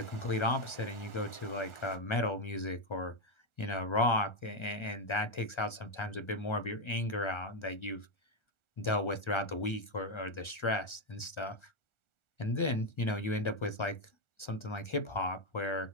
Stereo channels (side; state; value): right; late; 1.4 ms